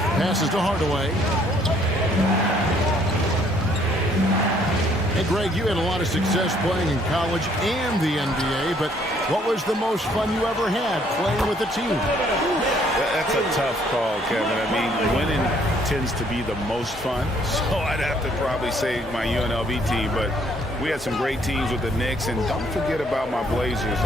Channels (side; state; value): both; normal; correlation 0.64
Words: to Hardaway. Hey, Greg, you had a lot of success playing in college and the NBA, but what was the most fun you ever had playing with a team? That's a tough call, Kevin. I mean, winning tends to be the most fun, so I'd have to probably say my UNLV team, but we had some great teams with the Knicks, and don't forget about my Blazers.